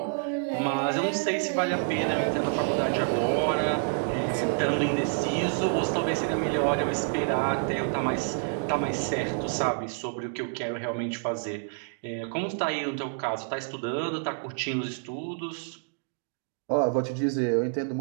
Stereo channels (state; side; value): silent; left; 59 dB below the other